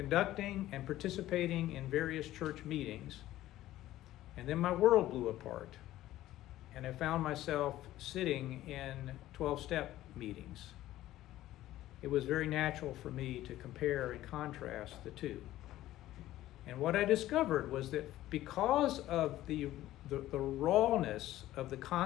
and participating in various church meetings. And then my world blew apart. And I found myself sitting in 12-step meetings. It was very natural for me to compare and contrast the two. And what I discovered was that because of the rawness of the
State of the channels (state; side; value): quieter; right; 14.7 dB